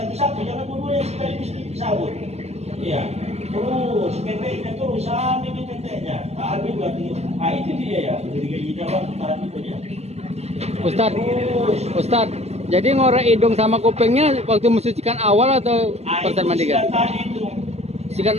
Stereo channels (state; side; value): late; left; 0.30 ms